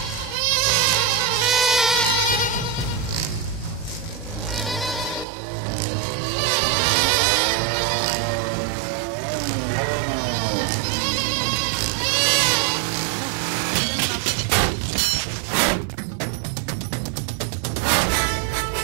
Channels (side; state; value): left; drops out; at 5.2 s